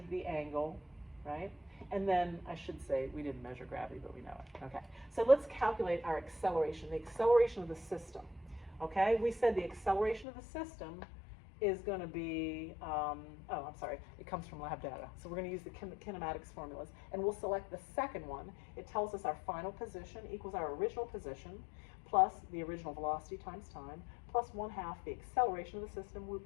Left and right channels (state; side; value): drops out; right; at 10.2 s